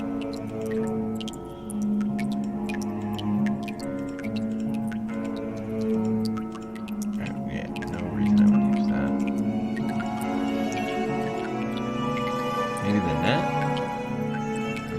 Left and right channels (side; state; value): both; identical; correlation 1.00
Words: Yeah, no reason I would use that. Maybe the net?